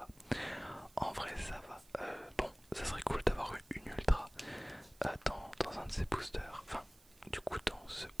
En vrai ça va. Bon, ça serait cool d'avoir une ultra dans un de ces boosters. Enfin, du coup dans ce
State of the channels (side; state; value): right; noise; hiss, 26 dB below the sound